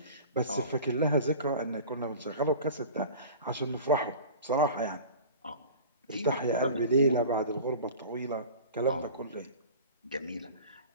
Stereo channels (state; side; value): inverted; both; correlation -0.39